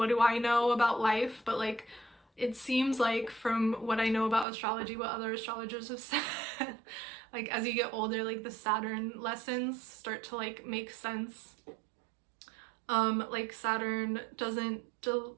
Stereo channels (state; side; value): drops out; left; at 4.5 s